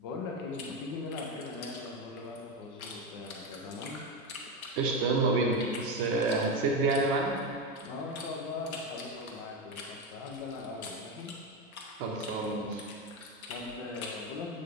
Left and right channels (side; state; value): both; normal; correlation 0.14